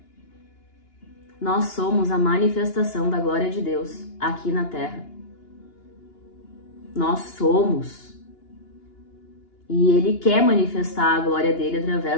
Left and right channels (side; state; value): right; late; 2.9 ms